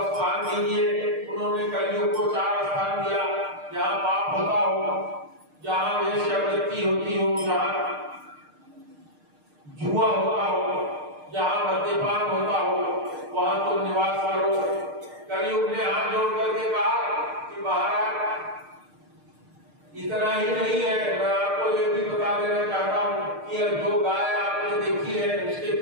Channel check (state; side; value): late; left; 6.6 ms